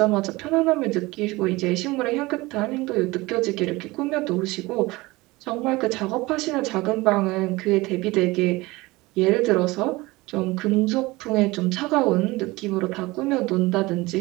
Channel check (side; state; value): left; quieter; 21.3 dB